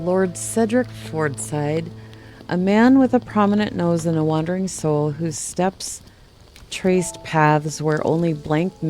Lord Cedric Fordside, a man with a prominent nose and a wandering soul whose steps traced paths where only blank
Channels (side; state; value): both; identical; correlation 1.00